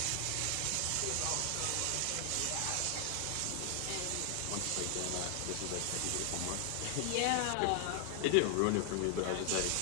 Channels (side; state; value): both; different; correlation 0.00